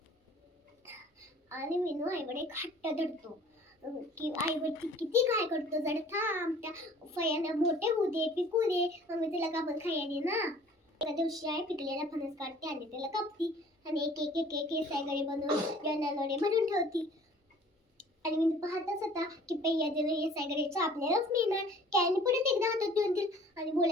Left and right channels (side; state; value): both; normal; correlation 0.51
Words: आणि विनू आईकडे एक हट्ट धरतो की आईवरती किती काय करतो, जर थांब त्या फळ्यांना मोठे होऊ दे, पिकू दे, मग मी तुला कापून खायला दे ना. एका दिवशी आई पिकलेला फणस काढते आणि त्याला कापती आणि एक एक एक एक सायगडे बनवून जनालोडे भरून ठेवती. आणि मी पाहतच होता की पहिल्या दिवशी हे सायगडेचं आपल्यालाच मिळणार. कॅनी परत एकदा हातात देऊन दिल आणि